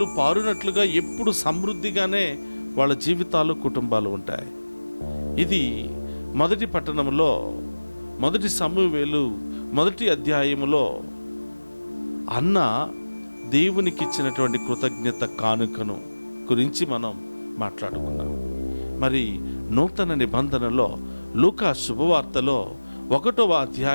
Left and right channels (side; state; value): both; inverted; correlation -1.00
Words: పారునట్లుగా ఎప్పుడు సమృద్ధిగానే వాళ్ళ జీవితాలు, కుటుంబాలు ఉంటాయి. ఇది మొదటి పట్టణంలో, మొదటి సమూయేలు 1 అధ్యాయములో అన్న దేవునికి ఇచ్చినటువంటి కృతజ్ఞత కానుకను గురించి మనం మాట్లాడుకున్నాం. మరి నూతన నిబంధనలో లూకా శుభవార్తలో 1వ